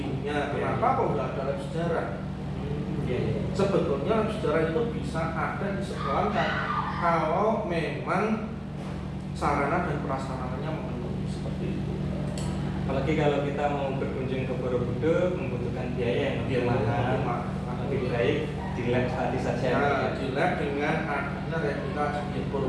Kenapa kok nggak ada lab sejarah? Iya. Sebetulnya lab sejarah itu bisa ada di sekolah kalau memang sarana dan prasarananya memenuhi seperti itu. Apalagi kalau kita mau berkunjung ke Borobudur membutuhkan biaya yang lebih mahal, lebih baik di lab tadi saja. Nah, di lab dengan adanya replika Candi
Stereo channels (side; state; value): both; identical; correlation 1.00